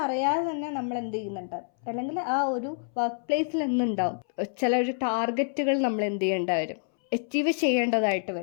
തന്നെ നമ്മൾ എന്ത് ചെയ്യുന്നുണ്ട്, അല്ലെങ്കിൽ ആ ഒരു വർക്ക് പ്ലേസിൽ എന്തുണ്ടാവും, ചില ഒരു ടാർഗറ്റുകൾ നമ്മൾ എന്ത് ചെയ്യേണ്ട വരും, അച്ചീവ് ചെയ്യേണ്ടതായിട്ട്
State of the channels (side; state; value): right; silent; 60 dB below the other